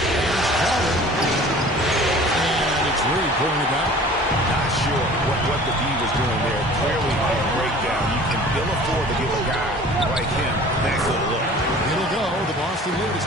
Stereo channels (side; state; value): both; normal; correlation 0.46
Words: Crowder. And it's Reed pulling it down. Not sure what the D was doing there. Clearly a breakdown. You can ill afford to give a guy like him that good look. It'll go. The Boston lead is